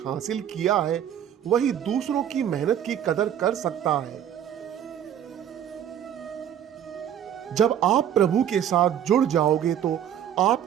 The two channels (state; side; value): quieter; left; 9.8 dB